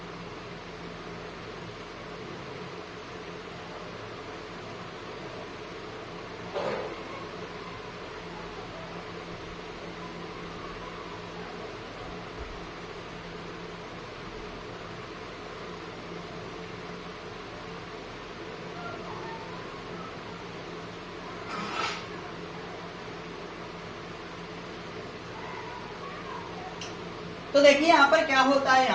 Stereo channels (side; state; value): both; identical; correlation 1.00